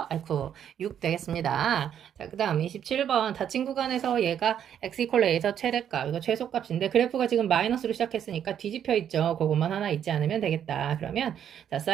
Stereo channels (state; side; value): quieter; left; 9.3 dB